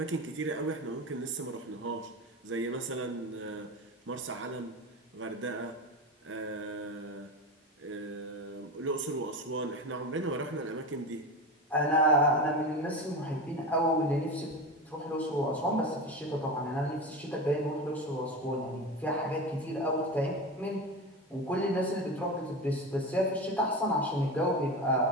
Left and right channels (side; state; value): both; normal; correlation 0.25